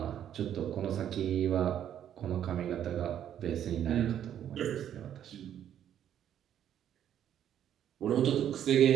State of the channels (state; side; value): quieter; left; 10.1 dB